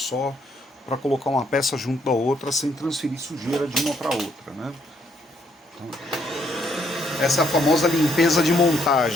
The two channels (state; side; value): normal; both; correlation 0.71